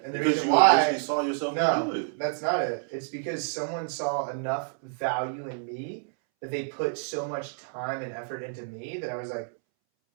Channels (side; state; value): left; silent; 59 dB below the other